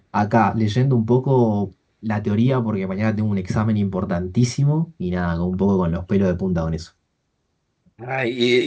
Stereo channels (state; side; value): identical; both; correlation 1.00